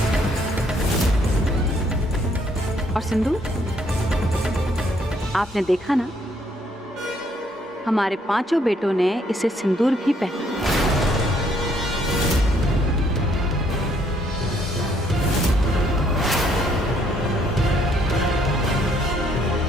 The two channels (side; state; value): both; normal; correlation 0.68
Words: और सिंदूर, आपने देखा ना, हमारे पांचों बेटों ने इसे सिंदूर भी पहना।